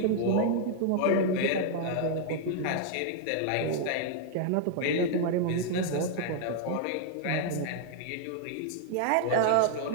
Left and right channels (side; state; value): both; different; correlation 0.00